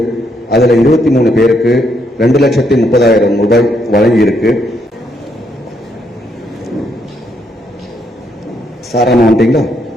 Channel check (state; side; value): normal; both; correlation 0.75